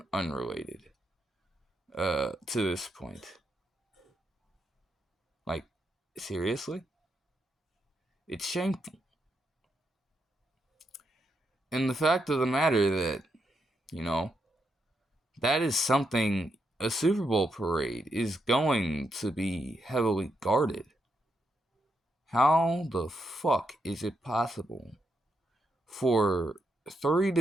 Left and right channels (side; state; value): both; normal; correlation 0.81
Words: unrelated to this point. Like, seriously? It's shameful. And the fact of the matter that, that is something a Super Bowl parade is going to be heavily guarded. How the fuck is it possible for 3